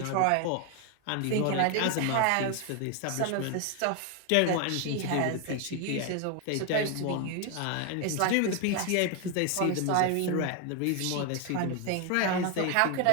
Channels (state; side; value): different; both; correlation 0.01